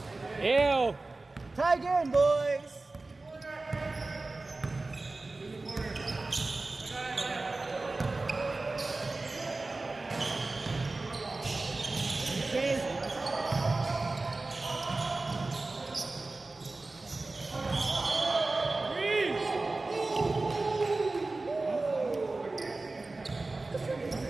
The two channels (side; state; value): left; quieter; 3.3 dB